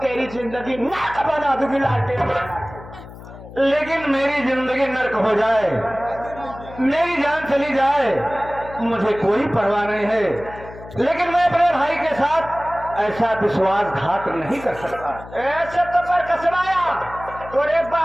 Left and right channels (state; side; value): noise; left; hum, 16 dB below the sound